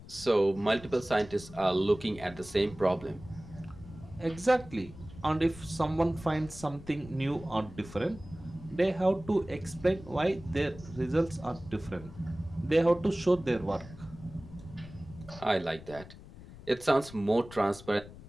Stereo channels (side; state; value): left; noise; rumble, 17 dB below the sound